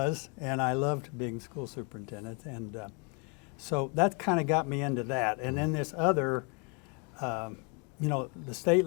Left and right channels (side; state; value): right; quieter; 34.4 dB